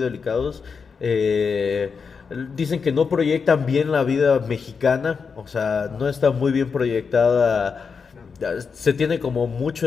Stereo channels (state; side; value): quieter; right; 5.6 dB